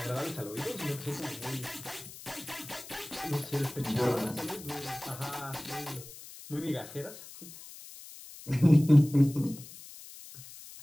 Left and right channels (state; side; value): noise; left; hiss, 16 dB below the sound